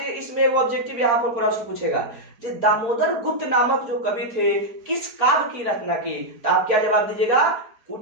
इसमें वो ऑब्जेक्टिव यहाँ पर प्रश्न पूछेगा, जो दामोदर गुप्त नामक जो कवि थे किस काव्य की रचना की? तो आप क्या जवाब दीजिएगा?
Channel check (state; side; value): late; left; 4.4 ms